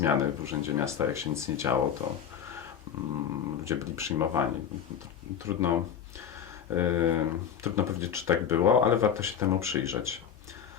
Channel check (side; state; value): right; quieter; 8.4 dB